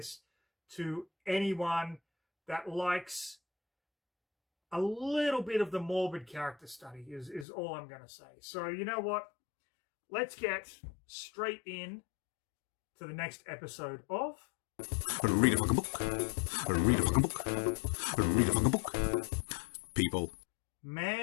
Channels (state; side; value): drops out; right; at 7.5 s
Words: to anyone that likes a little bit of the morbid character study, is all I'm going to say. So you know what? Let's get straight in to the next episode of... Read a fucking book. Read a fucking book. Read a fucking book. People.